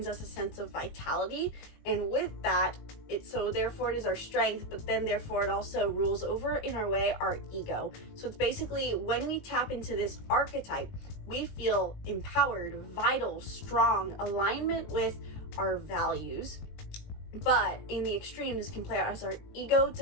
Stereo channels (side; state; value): right; late; 19 ms